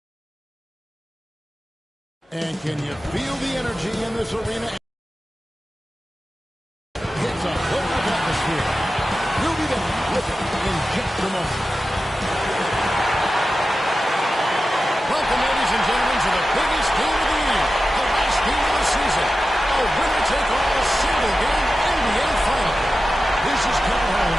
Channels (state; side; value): normal; both; correlation 0.93